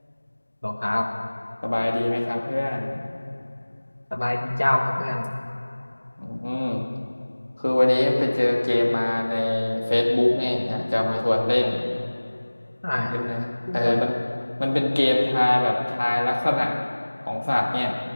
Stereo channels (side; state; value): both; inverted; correlation -1.00